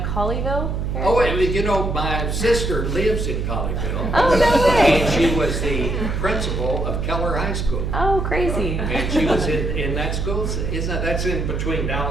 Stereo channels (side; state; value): right; noise; hum, 2 dB below the sound